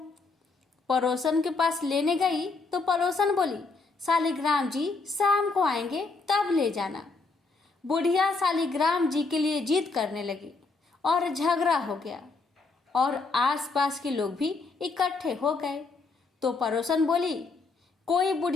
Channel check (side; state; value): right; quieter; 4.0 dB